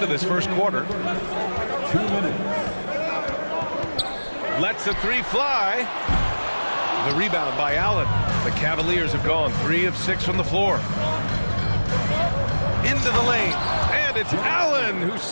this first quarter. 2 minutes. Lets the three fly. The rebound by Allen. The Cavaliers have gone 3 of 6 from the floor. Into the lane. And it's Allen who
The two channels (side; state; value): both; inverted; correlation -1.00